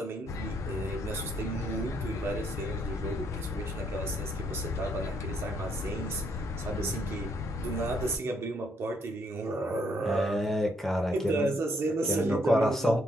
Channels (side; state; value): both; normal; correlation 0.72